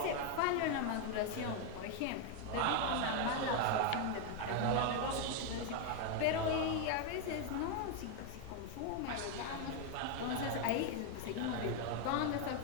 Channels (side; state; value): both; different; correlation 0.01